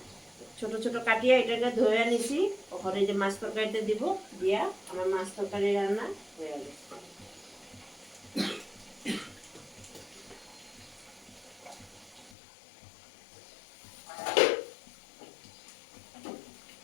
ছোট ছোট কাটিয়ে এটাকে ধুয়ে নিছি। ওখানে যে মাছ তরকারিতে দিব, দিয়া আমার মাছ তরকারি রান্না হয়ে গেছে।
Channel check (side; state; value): right; drops out; at 12.4 s